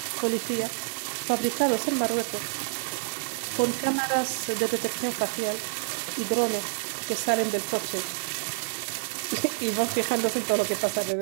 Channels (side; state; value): left; silent; 55 dB below the other